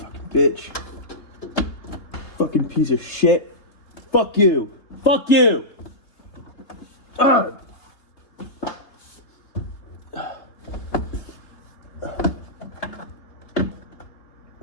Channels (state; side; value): late; right; 3.4 ms